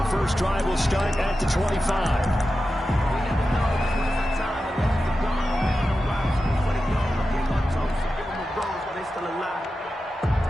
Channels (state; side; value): normal; both; correlation 0.92